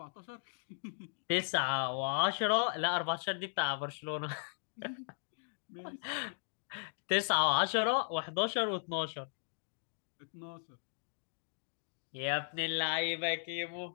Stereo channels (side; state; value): right; silent; digital silence